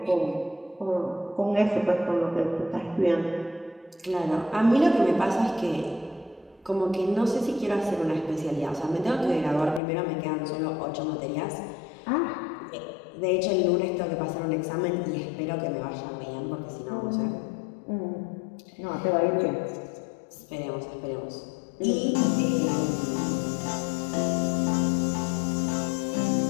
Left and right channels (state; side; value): drops out; right; at 9.8 s